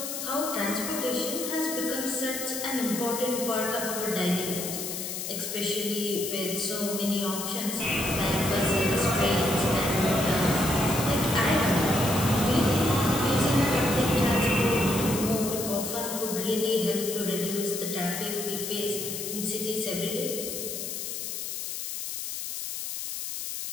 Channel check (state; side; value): noise; left; hiss, 5 dB below the sound